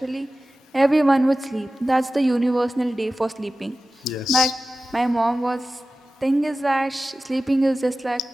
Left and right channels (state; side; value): normal; both; correlation 0.95